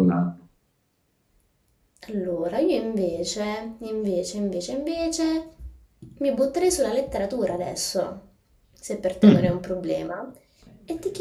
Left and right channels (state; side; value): identical; both; correlation 1.00